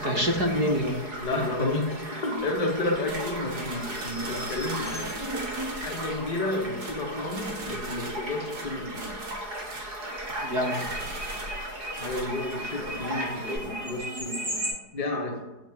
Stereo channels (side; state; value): left; late; 4.8 ms